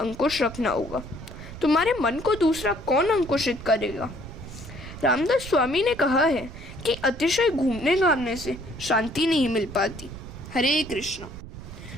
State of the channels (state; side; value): noise; right; rumble, 13 dB below the sound